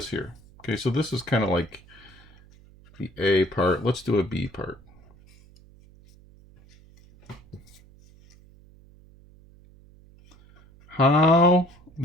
here. Okay, so this is kind of like the A part. Let's do a B part. how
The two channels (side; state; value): right; noise; hum, 26 dB below the sound